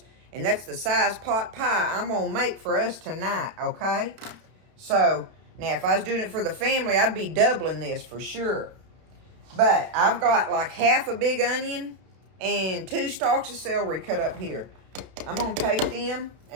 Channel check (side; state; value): left; late; 31 ms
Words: And that's the size pot pie I'm going to make for us tonight, okay? So, now if I was doing it for the family, I'd be doubling this for sure. But I've got like half a big onion and 2 stalks of celery cut up here. I'm going to take them